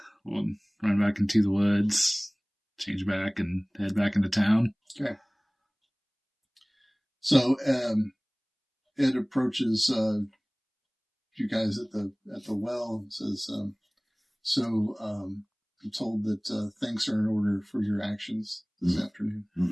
run back into the woods, change back, and head back into town. Okay. So Ed approaches you guys at the well and says, I'm told that thanks are in order for your actions this afternoon.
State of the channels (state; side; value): identical; both; correlation 1.00